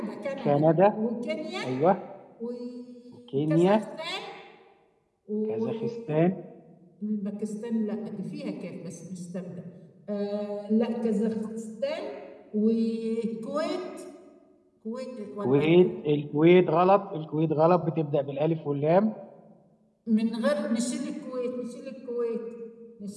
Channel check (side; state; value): both; identical; correlation 1.00